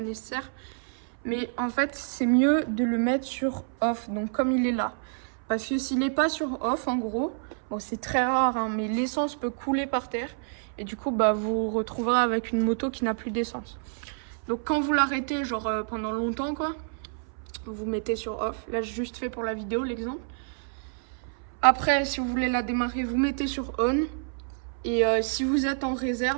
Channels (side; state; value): left; silent; 59 dB below the other